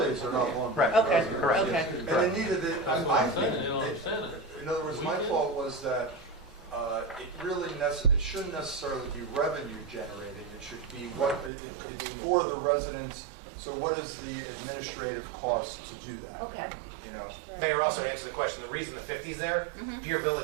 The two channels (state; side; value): drops out; left; at 11.5 s